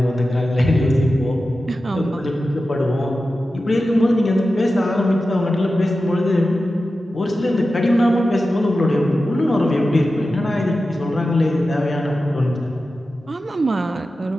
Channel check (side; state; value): both; normal; correlation 0.93